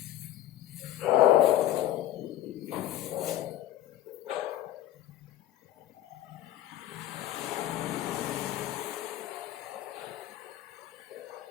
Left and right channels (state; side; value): quieter; right; 13.2 dB